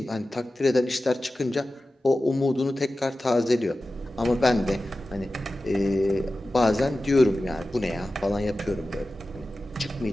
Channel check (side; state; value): both; normal; correlation 0.94